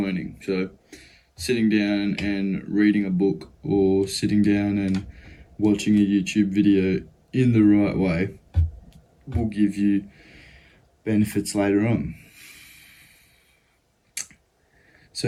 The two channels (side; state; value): both; identical; correlation 1.00